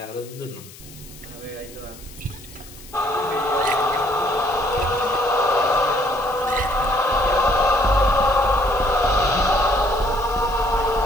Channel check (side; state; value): left; noise; hiss, 19 dB below the sound